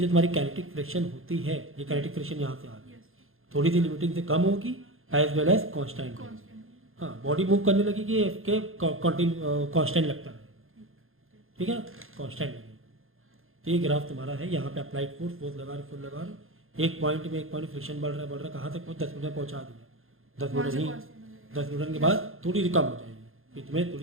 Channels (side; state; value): left; late; 0.60 ms